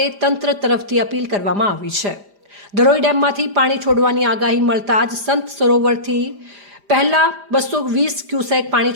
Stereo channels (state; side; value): late; left; 5.0 ms